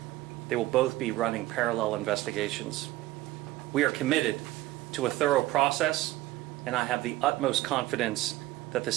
They will both be running parallel investigations. We are committed to a thorough process, and I have the utmost confidence that the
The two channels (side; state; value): left; quieter; 17.0 dB